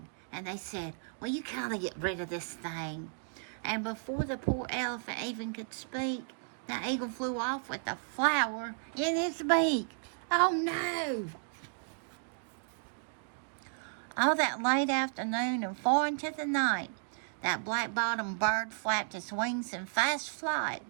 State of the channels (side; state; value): left; silent; digital silence